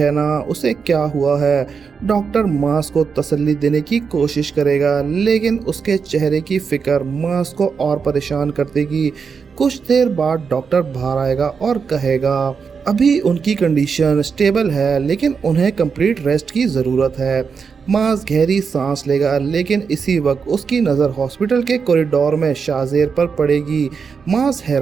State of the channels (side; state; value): left; quieter; 5.8 dB